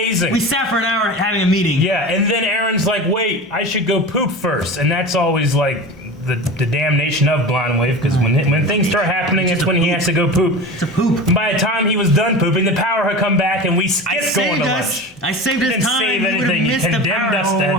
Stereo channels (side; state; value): both; normal; correlation 0.31